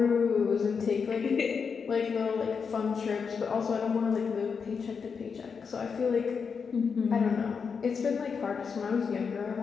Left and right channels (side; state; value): right; quieter; 5.8 dB